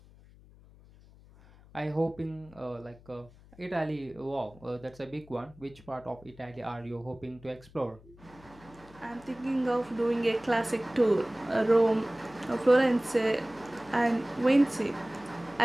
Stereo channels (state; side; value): noise; left; hum, 24 dB below the sound